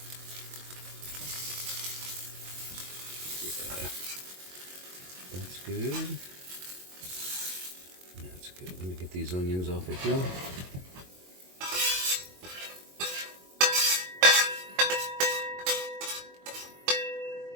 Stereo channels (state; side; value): late; left; 22 ms